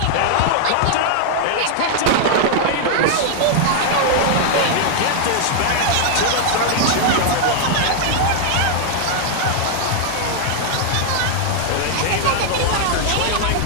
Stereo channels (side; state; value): both; different; correlation 0.00